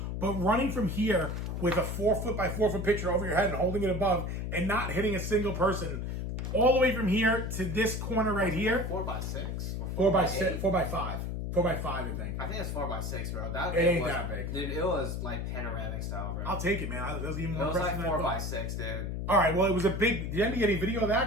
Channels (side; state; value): left; noise; hum, 3 dB below the sound